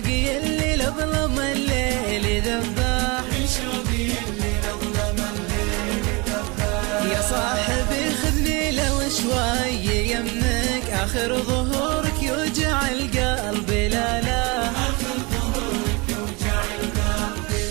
اللي لظلم الليل ذباح، من شوقي اللي لظلم الليل ذباح. يا صاحبي خذني لو شوي يمك، اخر ظهورك يوجع القلب لا لا، آخر ظهورك يوجع القلب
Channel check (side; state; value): left; quieter; 27.4 dB